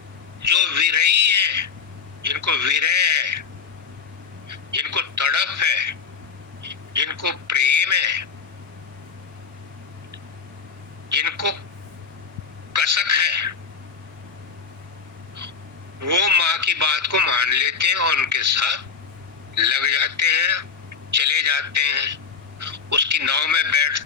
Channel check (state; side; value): quieter; right; 5.8 dB